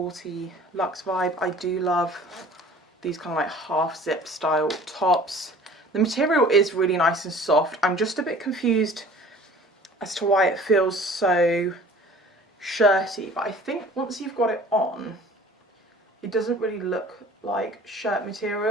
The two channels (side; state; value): both; normal; correlation 0.47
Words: luxe vibe. I do love these kind of like half zip style tops. The material is really nice and soft. I'm just a bit confused as to why it feels so shirty, but I think once you've got it on, it doesn't really look like shirt